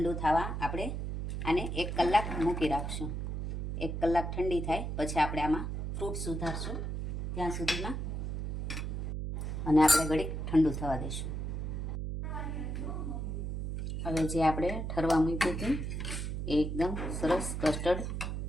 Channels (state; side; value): noise; right; hum, 3 dB below the sound